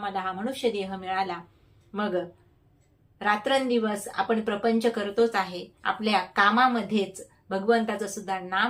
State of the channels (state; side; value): identical; both; correlation 1.00